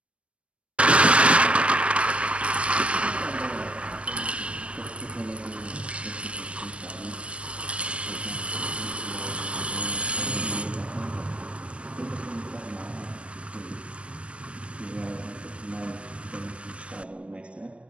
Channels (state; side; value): late; left; 0.060 ms